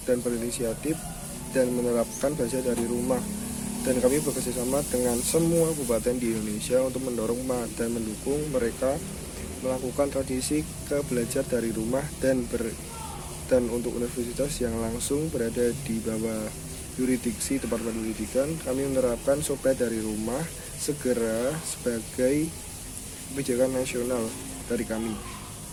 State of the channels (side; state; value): both; identical; correlation 1.00